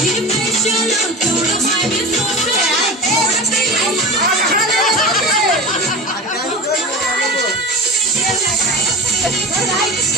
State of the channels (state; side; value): normal; both; correlation 0.30